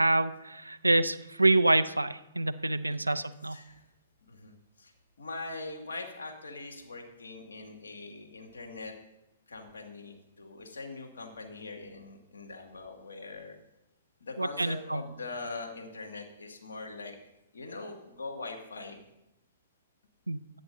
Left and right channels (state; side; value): inverted; both; correlation -0.94